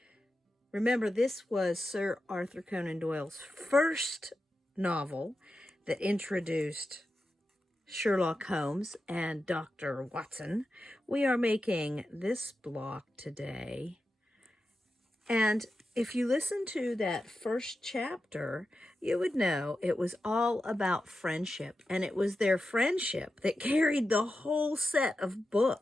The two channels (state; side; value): normal; both; correlation 0.91